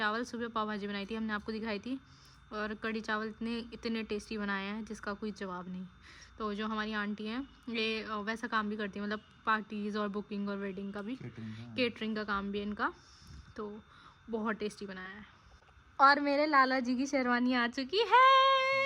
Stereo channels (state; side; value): identical; both; correlation 1.00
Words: सुबह पाव भाजी बनाई थी, हमने आपको दिखाई थी। और कढ़ी चावल इतने टेस्टी बनाए हैं जिसका कोई जवाब नहीं। तो जो हमारी आंटी हैं ये वैसा काम भी करती है, मतलब पार्टीज़ और बुकिंग और वेडिंग का भी, केटरिंग का काम भी है इनका। तो बहुत टेस्टी बनाया है। और मेरे लाला जी की शेरवानी आ चुकी है।